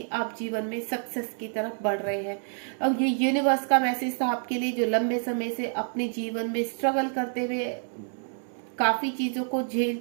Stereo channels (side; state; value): left; silent; 59 dB below the other